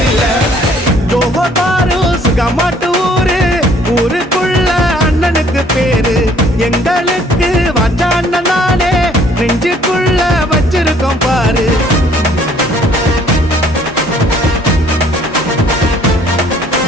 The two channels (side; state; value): both; normal; correlation 0.60